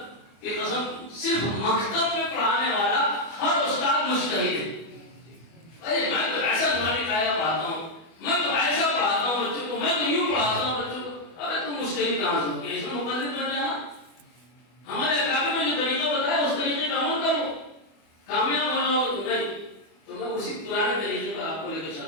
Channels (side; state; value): right; late; 25 ms